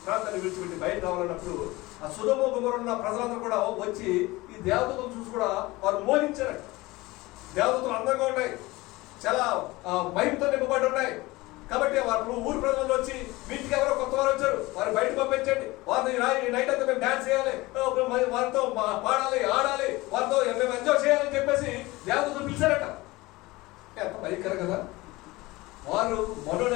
ప్రాంతాన్ని విడిచిపెట్టి బయట రావాలన్నప్పుడు ఆ సొదొమ గుమొర్రా ఉన్న ప్రజలందరూ కూడా వచ్చి ఈ దేవదూతలు చూసి కూడా వారు మోహించారు. దేవదూతలు అందంగా ఉన్నాయి, చాలా మహిమతో నింపబడి ఉన్నాయి. కాబట్టి వారు ఊరు ప్రజలు వచ్చి, వీటికి ఎవరో కొత్త వారు వచ్చారు, వారు బయట పంపించండి, వారిని నైట్ అంతా మేము డాన్స్ చేయాలి, వారితో పాడాలి, ఆడాలి, వారితో మేము ఎంజాయ్ చేయాలని చెప్పేసి దేవదూతలు పిలిచారట. ఎంత భయంకరం కదా. వారు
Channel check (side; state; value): right; quieter; 20.8 dB